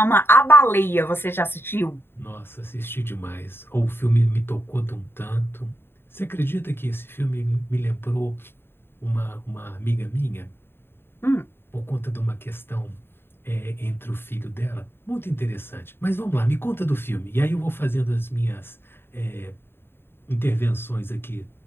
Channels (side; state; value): right; late; 0.11 ms